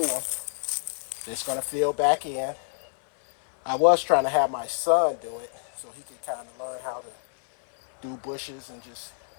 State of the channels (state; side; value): silent; right; digital silence